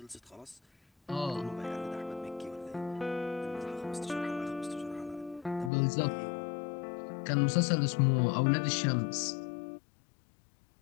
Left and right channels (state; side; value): drops out; right; at 5.7 s